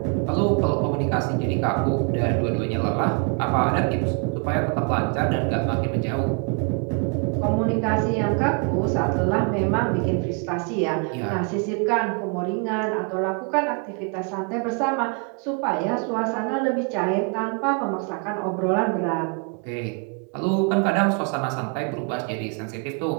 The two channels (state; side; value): quieter; left; 35.5 dB